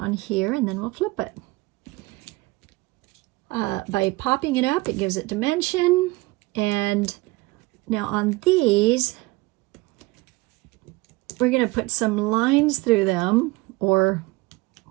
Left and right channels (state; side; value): quieter; left; 21.8 dB